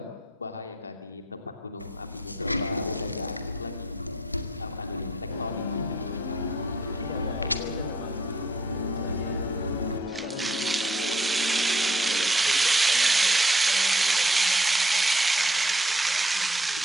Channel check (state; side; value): normal; both; correlation 0.63